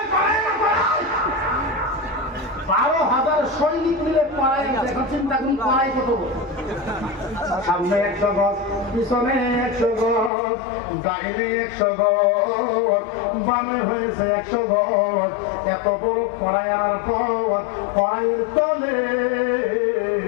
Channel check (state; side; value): drops out; right; at 10.3 s